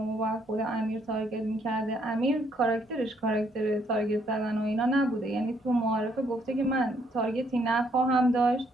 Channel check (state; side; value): normal; both; correlation 0.70